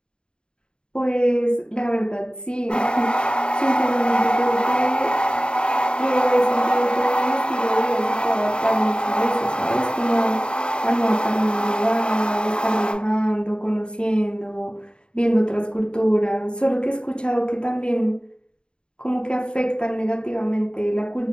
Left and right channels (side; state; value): right; late; 0.051 ms